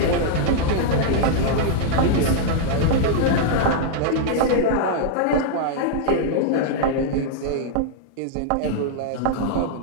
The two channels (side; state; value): both; different; correlation -0.01